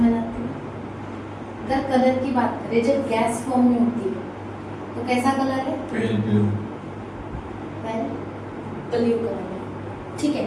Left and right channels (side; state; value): both; identical; correlation 1.00